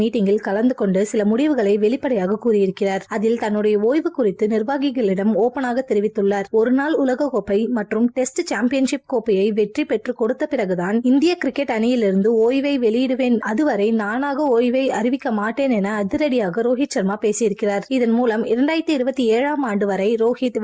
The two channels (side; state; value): both; identical; correlation 1.00